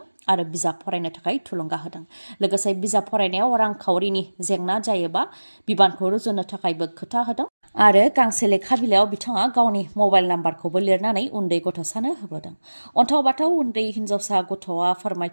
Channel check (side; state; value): both; inverted; correlation -1.00